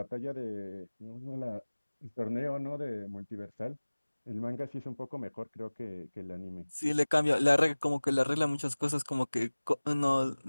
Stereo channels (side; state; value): both; inverted; correlation -1.00